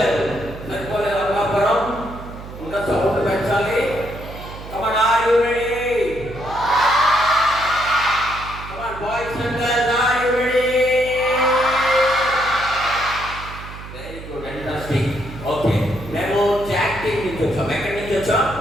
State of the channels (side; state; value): right; noise; hum, 13 dB below the sound